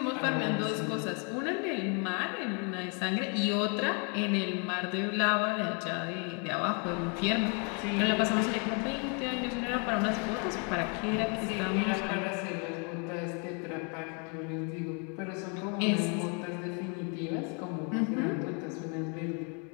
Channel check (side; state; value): right; quieter; 37.1 dB